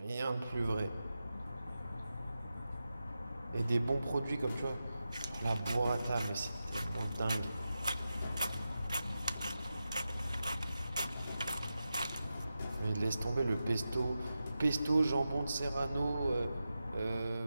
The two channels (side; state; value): both; inverted; correlation -0.91